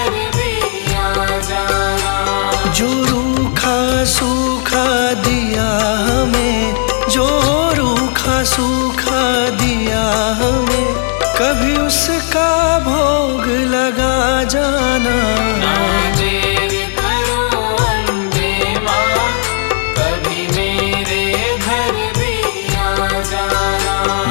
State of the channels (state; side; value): silent; right; 57 dB below the other